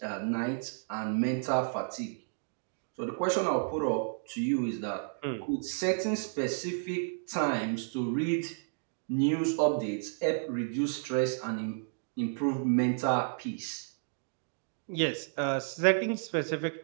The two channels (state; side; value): silent; left; digital silence